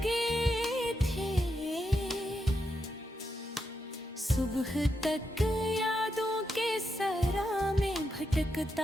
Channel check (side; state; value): both; normal; correlation 0.84